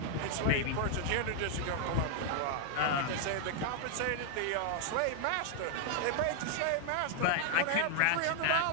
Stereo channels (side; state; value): both; different; correlation 0.00